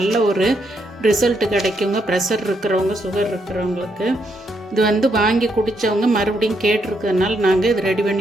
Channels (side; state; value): both; normal; correlation 0.77